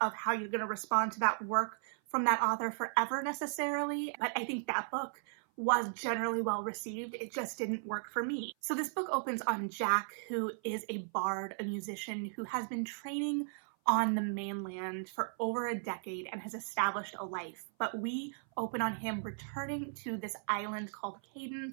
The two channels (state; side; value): silent; left; 54 dB below the other